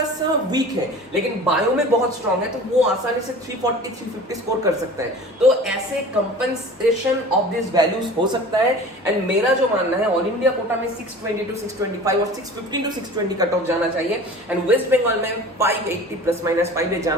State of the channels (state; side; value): normal; both; correlation 0.40